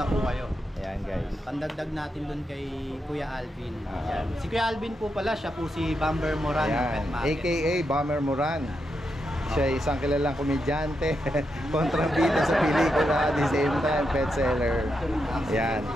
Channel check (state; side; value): normal; both; correlation 0.84